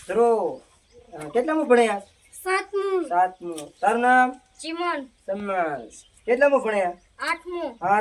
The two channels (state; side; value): identical; both; correlation 1.00